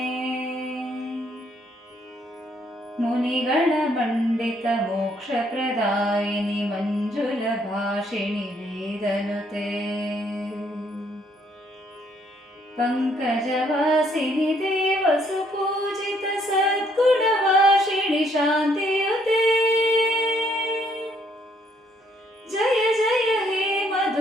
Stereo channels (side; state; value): both; normal; correlation 0.67